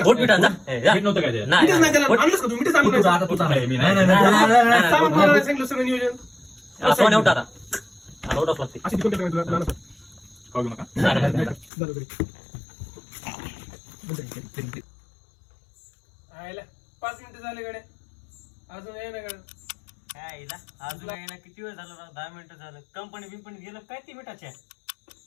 मीठ नव्हतं काय ते मिठच नाही त्याला आणलंच का तुम्ही मिठच आणलं आता तू चाललाय मी नाही सामान कोणाला नाही सांगितलं सगळं नियोजन सोन्या उठा आता उठाच लागते. अशी तिकडे काय तुला लहान खाऊ घेऊ नका बरोबर आयला 5 मिनिटं झाले गड्या अजून ये ना गड्या. काय हिला अजून काय ना किती वेळ झाला राव 10 मिनिटं झालं. कंपनी बिंपनी गेलं काय ती मिठाच्या.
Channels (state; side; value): drops out; right; at 11.7 s